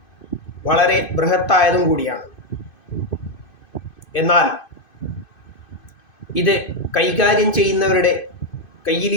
വളരെ ബൃഹത്തായതും കൂടിയാണ്. എന്നാൽ ഇത് കൈകാര്യം ചെയ്യുന്നവരുടെ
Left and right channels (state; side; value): late; right; 2.6 ms